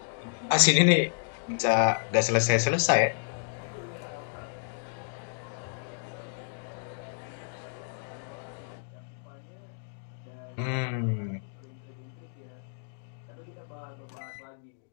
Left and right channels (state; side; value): silent; right; digital silence